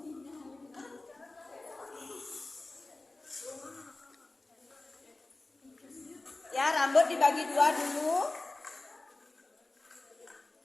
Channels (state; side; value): quieter; right; 3.0 dB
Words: Ya, rambut dibagi dua dulu.